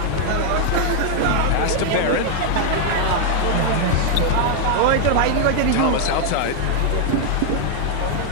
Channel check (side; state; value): both; different; correlation 0.00